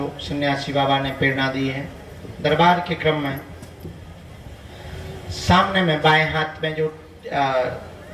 सन्यासी बाबा ने प्रेरणा दी है दरबार के क्रम में, सामने में बाएं हाथ में जो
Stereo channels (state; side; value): identical; both; correlation 1.00